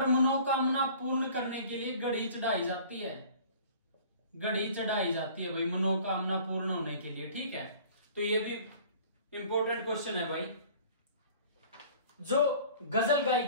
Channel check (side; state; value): both; inverted; correlation -0.48